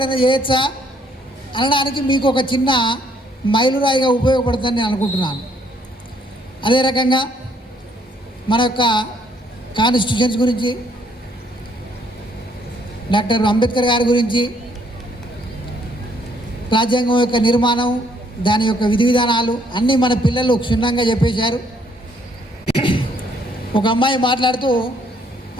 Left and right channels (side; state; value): both; normal; correlation 0.67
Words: చేయొచ్చా అనడానికి మీకు ఒక చిన్న మైలురాయిగా ఉపయోగపడుతుందని నేను అనుకుంటున్నాను. అదే రకంగా మన యొక్క కాన్స్టిట్యూషన్స్ గురించి, డాక్టర్ అంబేద్కర్ గారి గురించి, రాజ్యాంగం యొక్క నిర్మాణం, దాని యొక్క విధి విధానాలు అన్నీ మన పిల్లలు క్షుణ్ణంగా చెప్పేశారు. ఒక అమ్మాయి మాట్లాడుతూ